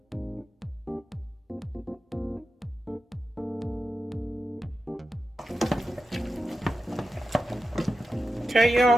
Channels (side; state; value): both; normal; correlation 0.91